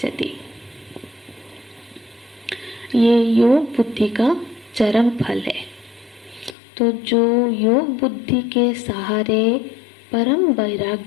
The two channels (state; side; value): drops out; right; at 6.6 s